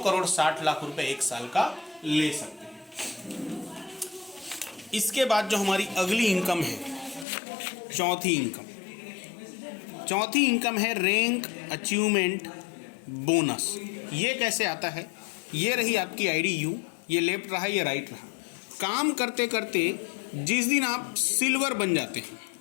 करोड़ 60 लाख रुपए एक साल का ले सकते हैं। इसके बाद जो हमारी अगली इनकम है, चौथी इनकम है रैंक अचीवमेंट बोनस। ये कैसे आता है? ये रही आपकी आईडी यू, ये लेफ्ट रहा, ये राइट रहा। काम करते करते जिस दिन आप सिल्वर बन जाते हैं,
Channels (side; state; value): right; drops out; at 7.2 s